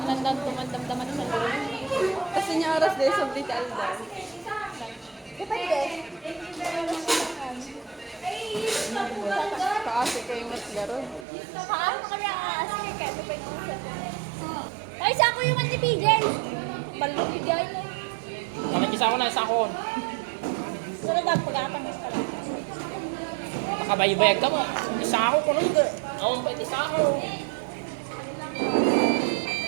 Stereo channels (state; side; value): drops out; left; at 11.2 s